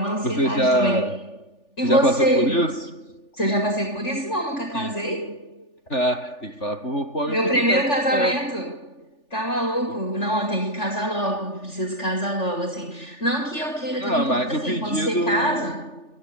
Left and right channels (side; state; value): right; late; 3.4 ms